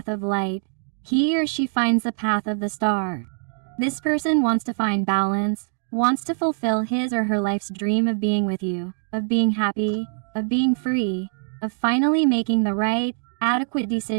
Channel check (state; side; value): silent; left; digital silence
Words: of light, he or she finds the path of the star. This person wants to find balance, wants to fulfill his or her life's dream of being with you, of being happy, of being free, of finally making the right, adequate